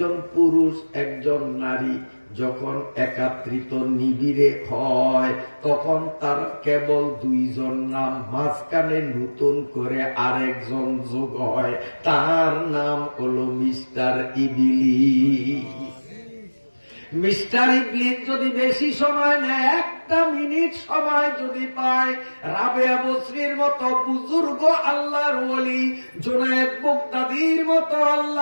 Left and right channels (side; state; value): both; inverted; correlation -1.00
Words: পুরুষ একজন নারী যখন একাত্রিত নিবিড়ে হয় তখন তার কেবল 2 জন নাম, মাঝখানে নতুন করে আরেকজন যোগ হয়, তার নাম হলো মিস্টার ইবলিস। মিস্টার ইবলিস যদি বেশি সময় নেয়, 1 মিনিট সময় যদি পায়, রাবেয়া বসরির মতো বুজুর্গ আল্লাহর ওলি, জুনায়েদ বাগদাদীর মতো